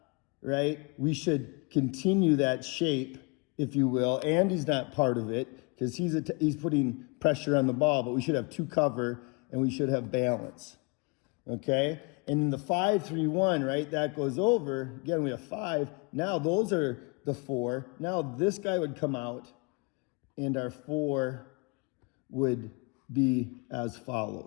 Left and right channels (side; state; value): right; quieter; 30.3 dB